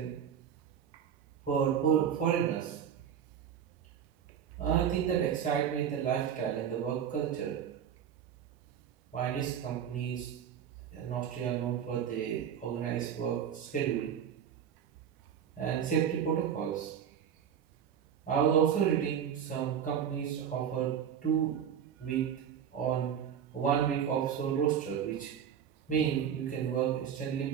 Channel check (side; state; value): left; quieter; 8.7 dB